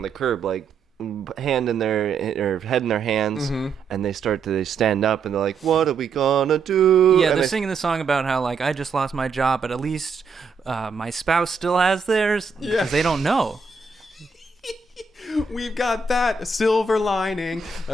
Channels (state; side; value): quieter; left; 4.8 dB